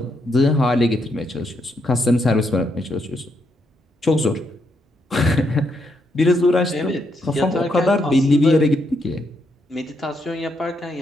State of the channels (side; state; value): both; normal; correlation 0.78